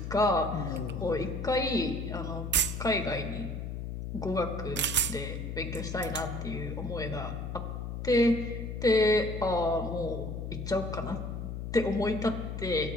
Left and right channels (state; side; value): noise; left; hum, 5 dB below the sound